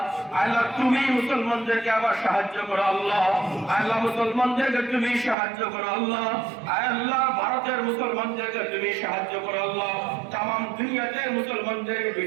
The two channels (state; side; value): drops out; left; at 5.4 s